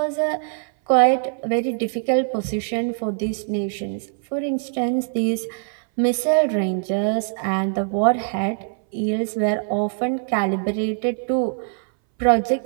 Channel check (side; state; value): left; silent; 62 dB below the other